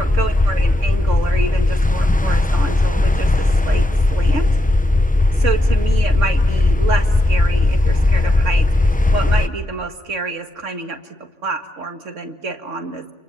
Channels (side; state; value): both; normal; correlation 0.85